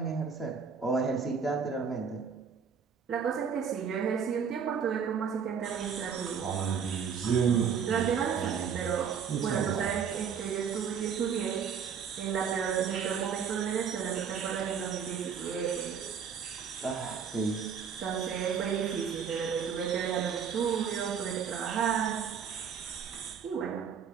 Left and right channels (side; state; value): left; quieter; 6.9 dB